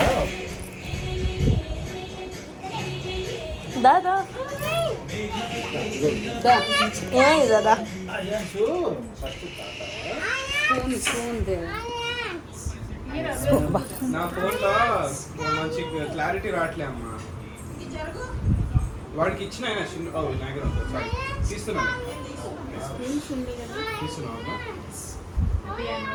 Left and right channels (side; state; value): both; identical; correlation 1.00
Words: దాదా ఏమైంది దాదా నా ఫోన్లో మంచి క్లారిటీ రావట్లే అమ్మా వాడికి ఇచ్చిన ఆయన చిన్న నా దగ్గర ఉంటుంది సారీ తీస్తున్నాను తీస్తున్నాను